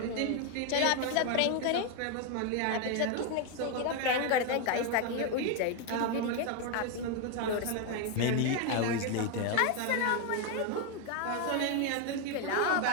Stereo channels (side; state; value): both; different; correlation 0.01